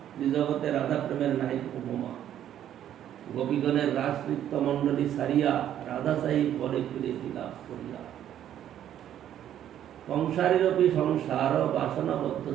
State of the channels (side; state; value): left; quieter; 10.8 dB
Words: জগতে রাধা প্রেমের নাই উপমা। গোপীগণের রাজনৃত্য মণ্ডলী সারিয়া রাধা সাহি পরে ফিরে লাভ করিয়া। সংসারীরপি সংসার বাসনাবদ্ধ